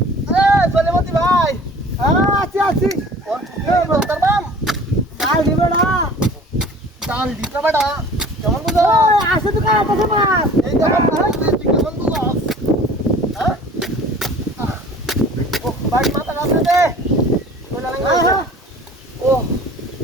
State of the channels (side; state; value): both; normal; correlation 0.46